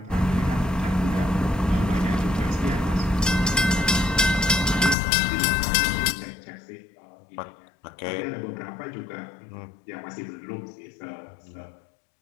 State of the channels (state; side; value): drops out; right; at 5.0 s